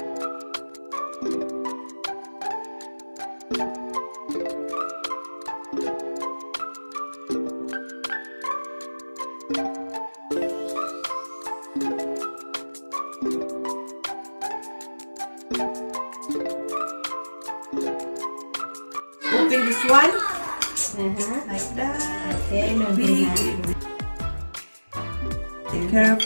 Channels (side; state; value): both; inverted; correlation -1.00